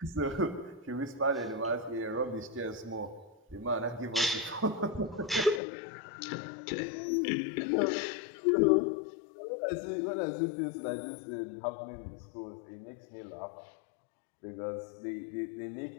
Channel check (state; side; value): drops out; right; at 5.6 s